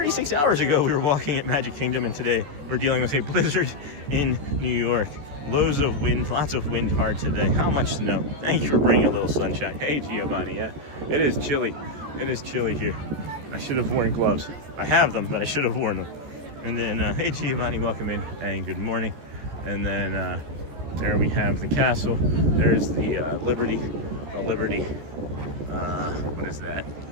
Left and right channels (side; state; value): left; late; 14 ms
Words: hours ago, we were walking at Magic Kingdom, and today we're dealing with a blizzard in New York. Loads of wind, lots of wind hard today. How much snow? Thank you for bringing a little sunshine. Hey, Giovanni, yeah, it is chilly. It is chilly here. I should have worn gloves. I have them, but I should have worn them. And then, hey, Giovanni, welcome in, and good morning. And then there we have the castle. There's the Liberty, what is that?